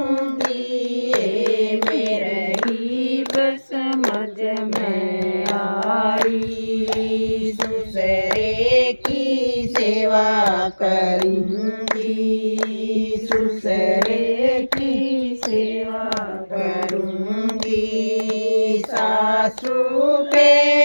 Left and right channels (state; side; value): inverted; both; correlation -1.00